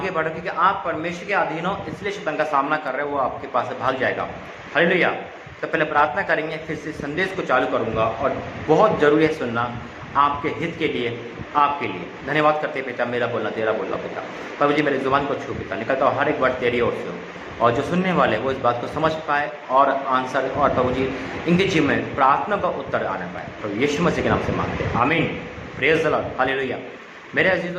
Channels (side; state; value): both; identical; correlation 1.00